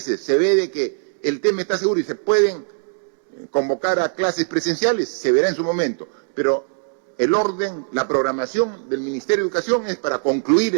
se ve de que el tema está seguro y se pueden convocar a clases presenciales, se verá en su momento, pero el orden, la programación del Ministerio de Educación es para concluir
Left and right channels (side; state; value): left; silent; digital silence